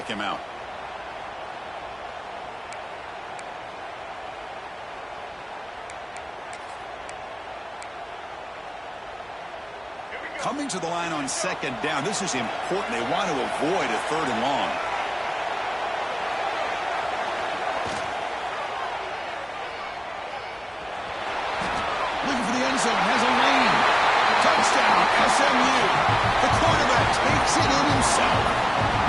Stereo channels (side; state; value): both; identical; correlation 1.00